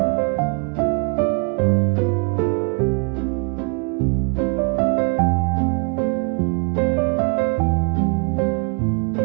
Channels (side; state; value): left; quieter; 37.4 dB